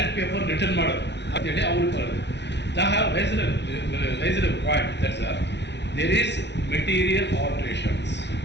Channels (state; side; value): late; right; 0.50 ms